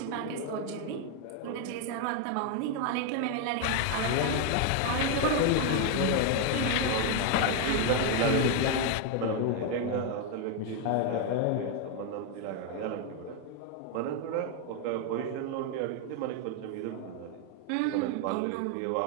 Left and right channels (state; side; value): different; both; correlation 0.01